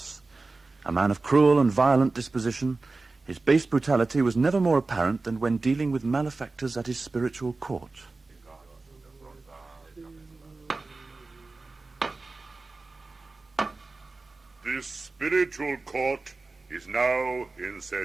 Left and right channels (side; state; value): left; quieter; 3.6 dB